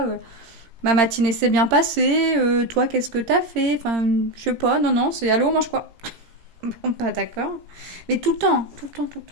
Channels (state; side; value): late; left; 17 ms